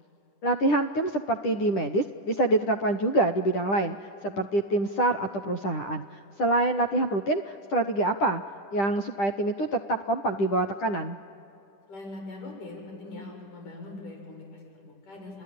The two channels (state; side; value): late; right; 10 ms